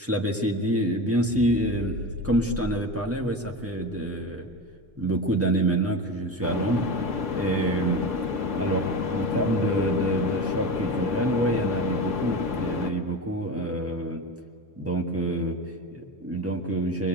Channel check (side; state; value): both; normal; correlation 0.25